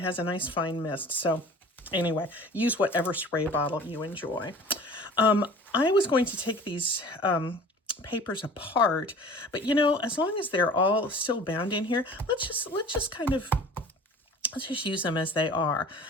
has a nice fine mist. So anyway, use whatever spray bottle you enjoy. I was going to take these papers apart, but as long as they're all still bound in here, let's just use them as they are.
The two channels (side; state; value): both; normal; correlation 0.44